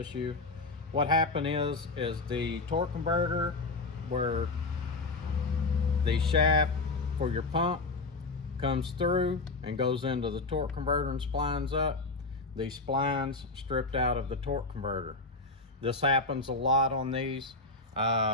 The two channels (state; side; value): quieter; right; 3.5 dB